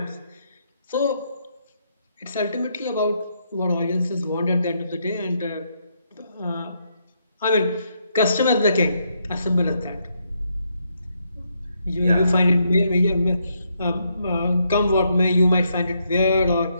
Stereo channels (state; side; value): inverted; both; correlation -0.77